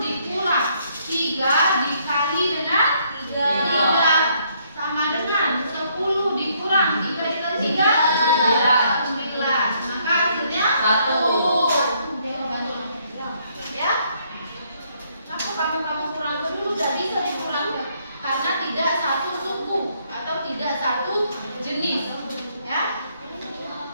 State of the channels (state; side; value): inverted; both; correlation -0.69